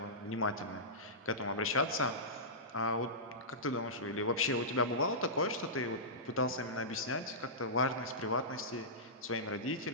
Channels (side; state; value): both; normal; correlation -0.17